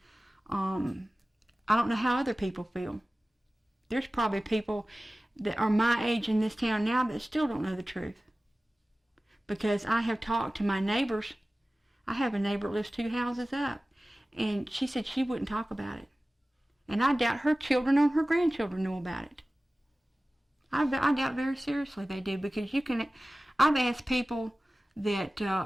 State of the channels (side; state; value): both; normal; correlation 0.97